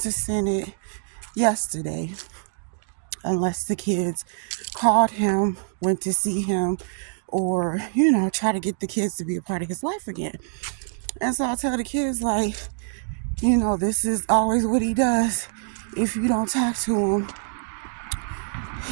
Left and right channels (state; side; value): silent; left; digital silence